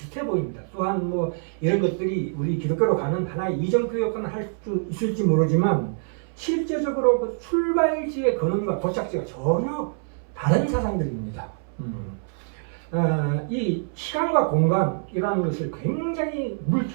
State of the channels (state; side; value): silent; left; 61 dB below the other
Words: 보입니다. 또한 뭐 이런 것들이 우리 기독교로 가는 하나의 이정표 역할을 할 수 있을지 모르지만 실제적으로 그 출발지의 근원과 도착지가 전혀 다른 사상들입니다. 이 시간과 공간이라는 것을 굉장히